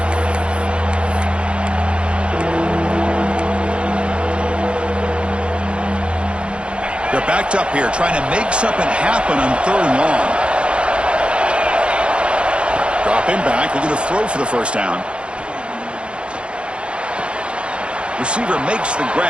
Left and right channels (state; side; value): late; left; 0.057 ms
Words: They're backed up here, trying to make something happen on 3rd and long. Dropping back, looking to throw for the first down. Receiver makes the